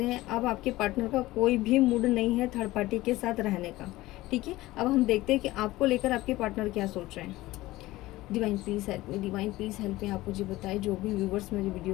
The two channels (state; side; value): quieter; right; 18.0 dB